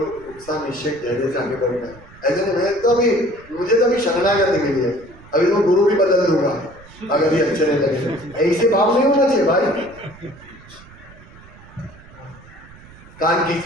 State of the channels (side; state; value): right; noise; rumble, 22 dB below the sound